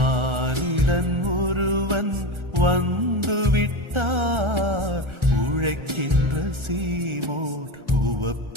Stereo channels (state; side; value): late; left; 1.4 ms